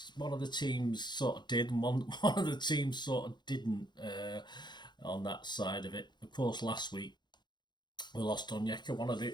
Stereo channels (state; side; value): late; right; 0.21 ms